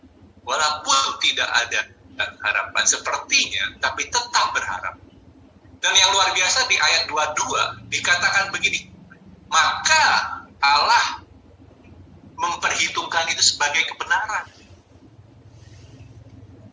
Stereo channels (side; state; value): both; identical; correlation 1.00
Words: Walaupun tidak ada harapan sepertinya, tapi tetap berharap. Dan yang luar biasa di ayat 22 dikatakan begini, maka Allah memperhitungkan itu sebagai kebenaran.